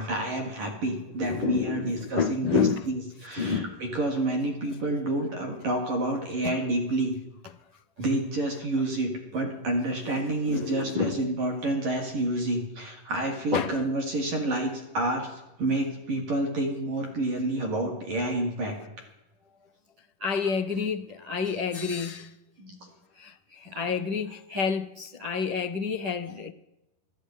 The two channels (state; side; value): late; left; 10 ms